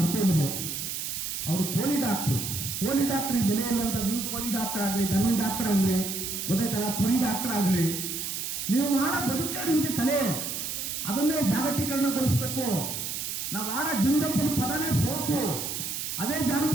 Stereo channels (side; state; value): right; noise; hiss, 4 dB below the sound